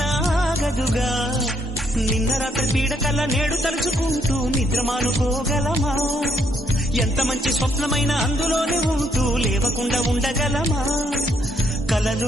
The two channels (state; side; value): normal; both; correlation 0.73